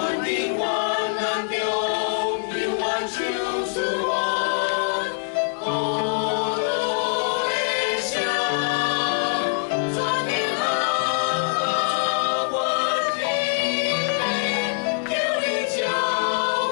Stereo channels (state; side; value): silent; right; digital silence